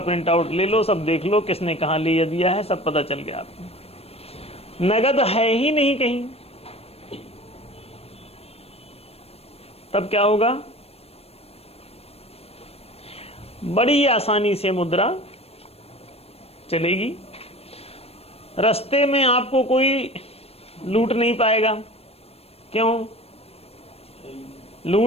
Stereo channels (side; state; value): right; late; 0.29 ms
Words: प्रिंट आउट ले लो, सब देख लो किसने कहां लिया दिया है, सब पता चल गया आपको। नगद है ही नहीं कहीं, तब क्या होगा? बड़ी आसानी से मुद्रा चलेगी, रास्ते में आपको कोई लूट नहीं पाएगा। क्यों?